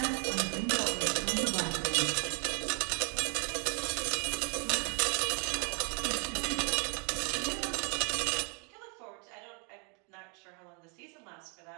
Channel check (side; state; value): left; quieter; 36.0 dB